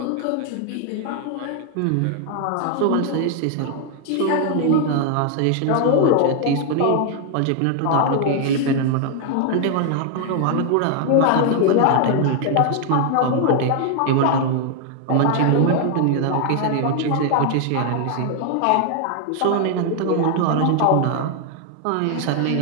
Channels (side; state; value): both; different; correlation 0.00